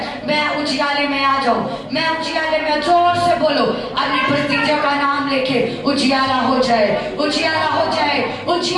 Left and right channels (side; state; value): both; identical; correlation 1.00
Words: मैं उजियाले में आ जाऊं, मैं उजियाले में, जोर से बोलो अपनी परिस्थितियों का नाम लेके उजियाला हो जाए, उजियाला हो जाए,